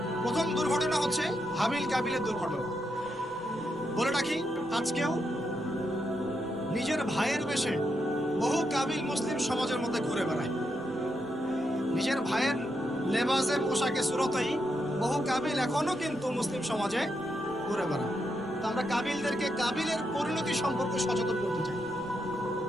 প্রথম দুর্ঘটনা হচ্ছে হাবিল কাবিলের দুর্ঘটনা। বলে রাখি, আজকেও নিজের ভাইয়ের বেশে বহু কাবিল মুসলিম সমাজের মধ্যে ঘুরে বেড়ায়। নিজের ভাইয়ের লেবাসে, পোশাকে, সুরতেই বহু কাবিল এখনো কিন্তু মুসলিম সমাজে ঘুরে বেড়ায়। তো আমরা কাবিলদেরকে কাবিলের পরিণতি সম্পর্কে সচেতন করতে চাই।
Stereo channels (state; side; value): normal; both; correlation 0.82